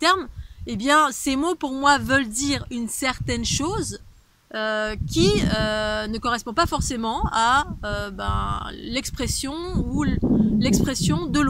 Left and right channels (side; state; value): both; identical; correlation 1.00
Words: eh bien, ces mots, pour moi, veulent dire une certaine chose qui ne correspond pas forcément à l'expression ou l'expression de